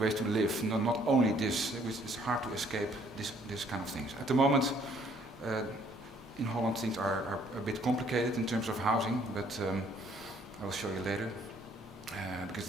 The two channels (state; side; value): normal; both; correlation 0.63